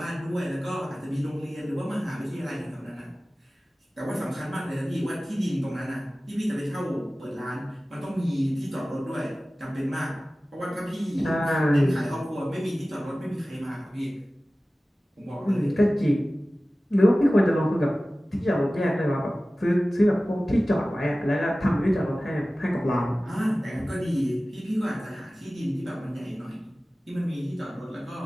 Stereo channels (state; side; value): normal; both; correlation 0.97